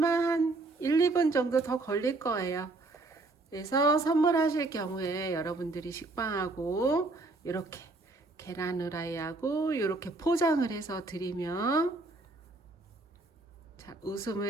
한 1, 2분 정도 더 걸릴 거예요. 그래서 선물하실 경우에 여러분들이 식빵하고 이렇게 계란 후라이하고 이렇게 포장을 해서 드리면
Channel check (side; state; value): left; quieter; 3.2 dB